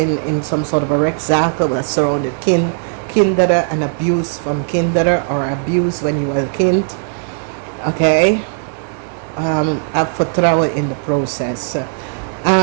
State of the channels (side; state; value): left; silent; digital silence